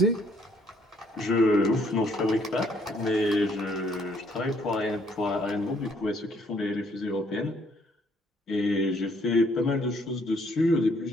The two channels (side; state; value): both; normal; correlation 0.66